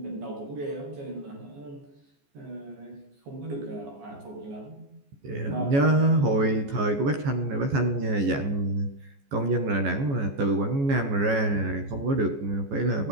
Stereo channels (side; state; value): left; late; 14 ms